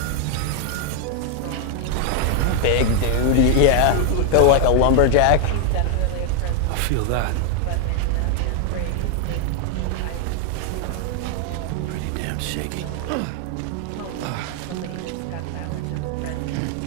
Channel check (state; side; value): different; both; correlation 0.00